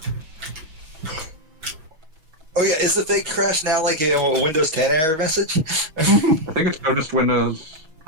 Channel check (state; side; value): late; left; 6.2 ms